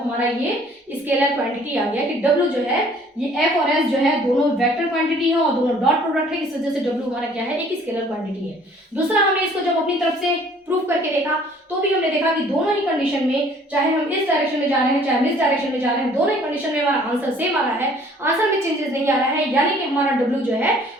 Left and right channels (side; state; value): both; normal; correlation 0.56